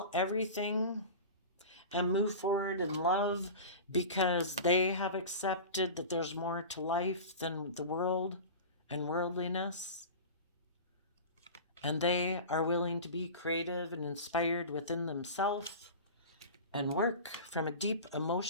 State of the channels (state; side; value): inverted; both; correlation -0.32